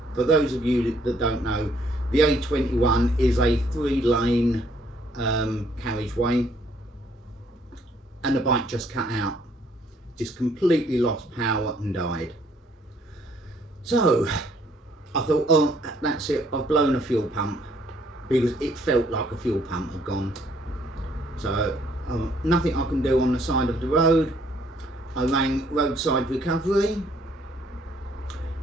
For those of you that don't know, the A21 is a 3-lane carriageway, and the bike just cut out, just completely lost power and died. So I thought, oh, that's it, I've blown a fuel pump, because it felt like a fuel pump had gone. So nothing I can do on the side of the road. I rang Roadside Recovery,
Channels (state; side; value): normal; both; correlation 0.66